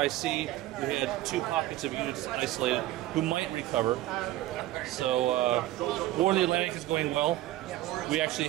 We had 2 pockets of units isolated who might recover. So War of the Atlantic is going well. We actually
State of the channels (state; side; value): quieter; left; 15.8 dB